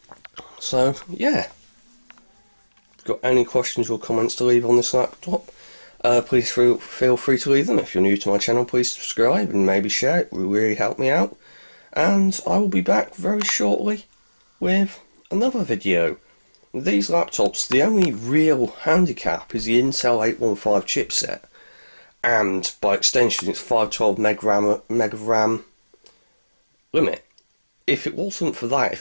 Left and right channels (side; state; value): both; inverted; correlation -1.00